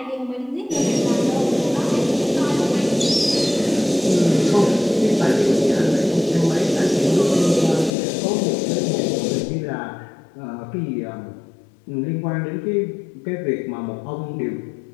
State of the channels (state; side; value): drops out; right; at 7.9 s